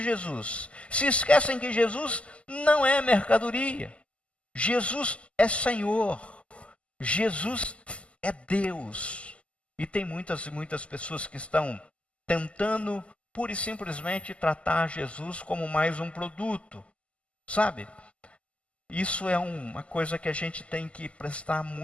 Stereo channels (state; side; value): late; right; 0.058 ms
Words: Jesus. Se esquecem que Jesus não é mercadoria. Jesus é Senhor, Jesus é Deus. E tem muitas e muitas pessoas que estão tentando pura e simplesmente tratar Jesus como mais um produto. Sabe? Isso é uma coisa que a gente tem que prestar